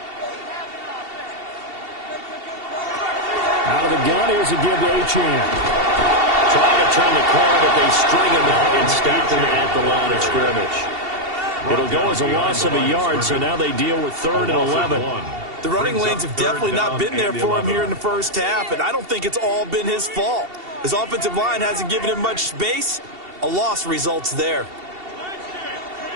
Out of the gun, here's a give to Achane. Trying to turn the corner, but they string him out and stop him at the line of scrimmage. It'll go as a loss of a yard, so now they deal with 3rd and 11. The running lanes have definitely not been there for him here in the first half, and I don't think it's all been his fault. His offensive line hasn't given him much space. A loss results there.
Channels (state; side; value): late; left; 2.7 ms